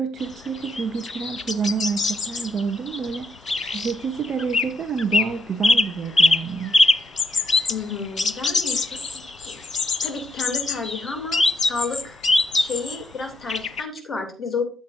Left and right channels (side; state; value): both; normal; correlation 0.78